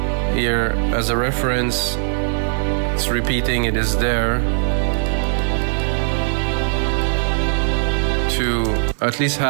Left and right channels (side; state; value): left; silent; digital silence